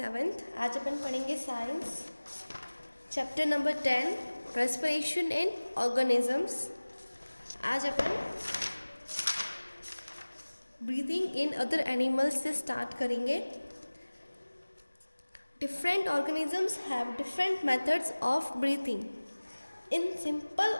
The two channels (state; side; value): inverted; both; correlation -1.00